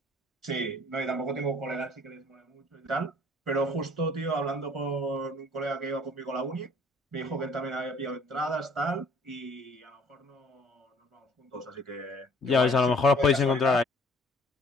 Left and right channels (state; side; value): normal; both; correlation 0.55